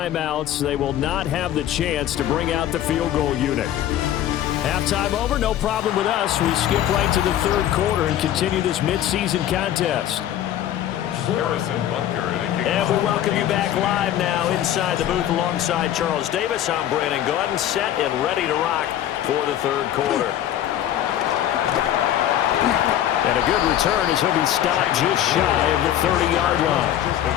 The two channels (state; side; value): quieter; right; 11.6 dB